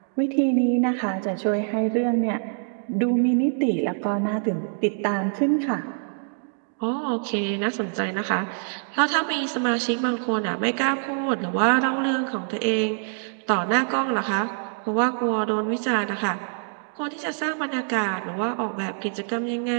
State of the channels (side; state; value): left; silent; digital silence